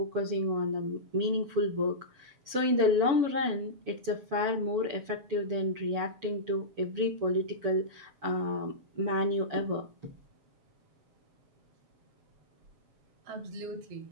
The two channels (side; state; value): left; late; 7.0 ms